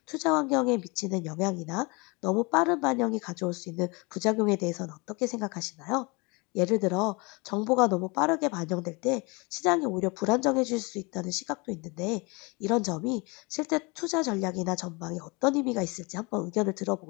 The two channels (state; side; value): quieter; right; 28.0 dB